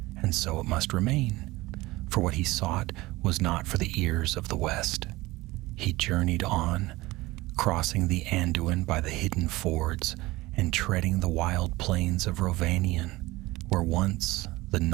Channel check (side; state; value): left; quieter; 19.8 dB